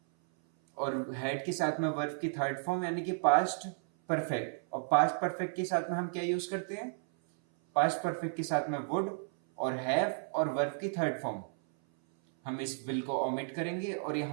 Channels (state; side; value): silent; left; 56 dB below the other